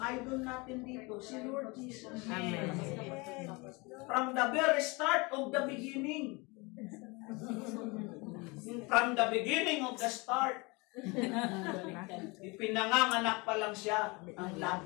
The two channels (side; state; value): right; quieter; 26.9 dB